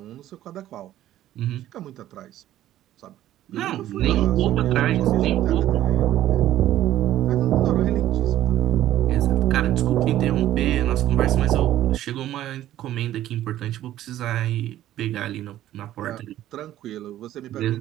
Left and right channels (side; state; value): left; quieter; 13.2 dB